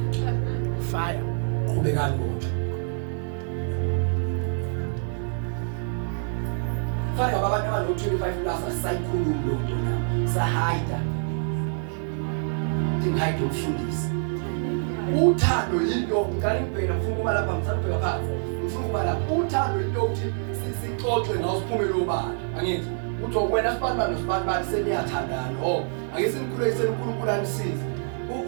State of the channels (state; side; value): silent; left; digital silence